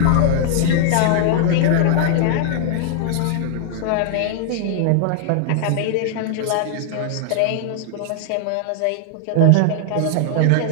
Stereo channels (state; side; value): different; both; correlation 0.00